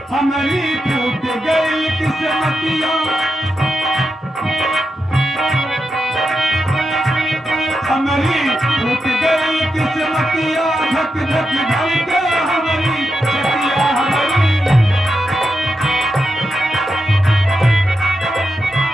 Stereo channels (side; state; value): both; normal; correlation 0.87